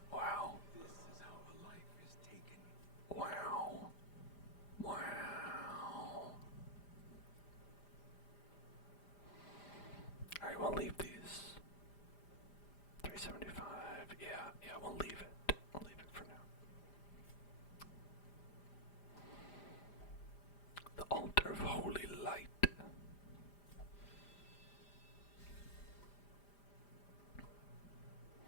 Wow. This is how a life is taken. Wow. Wow. Alright, we'll leave these. 375. Yeah, we'll leave it. We'll leave it for now. The altar of holy light.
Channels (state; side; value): late; right; 5.0 ms